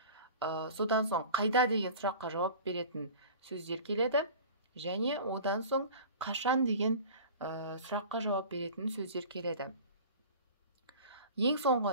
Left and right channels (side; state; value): both; inverted; correlation -0.40